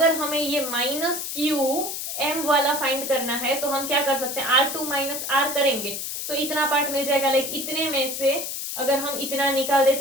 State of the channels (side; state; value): left; noise; hiss, 5 dB below the sound